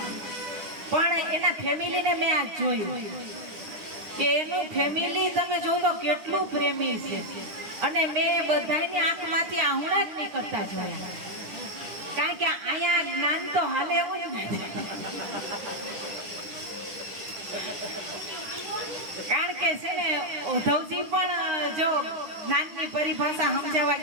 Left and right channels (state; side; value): late; left; 10 ms